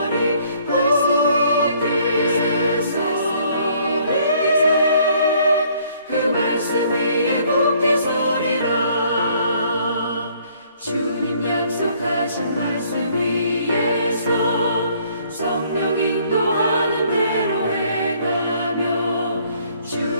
굳게 서리 그 말씀 위에 굳게 서리라. 주님 약속하신 말씀 위에서 성령 인도하는 대로 해가며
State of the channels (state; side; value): inverted; both; correlation -0.62